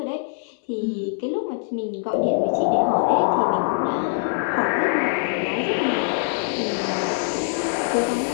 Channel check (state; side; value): silent; right; 63 dB below the other